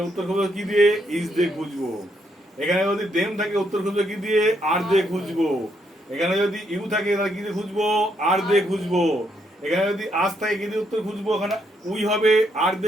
উত্তর খুঁজবো কি দিয়ে? ইজ দিয়ে খুঁজবো। এখানে যদি দেম থাকে উত্তর খুঁজবো কি দিয়ে? আর দিয়ে খুঁজবো। এখানে যদি ইউ থাকে তাহলে কি দিয়ে খুঁজবো? আর দিয়ে খুঁজবো। এখানে যদি আজ থাকে কি দিয়ে উত্তর খুঁজবো? এখানে উই হবে, আর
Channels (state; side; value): normal; both; correlation 0.76